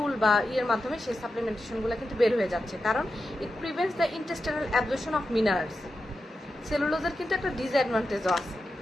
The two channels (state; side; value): normal; both; correlation 0.90